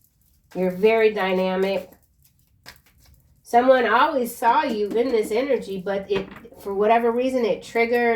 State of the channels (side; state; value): both; identical; correlation 1.00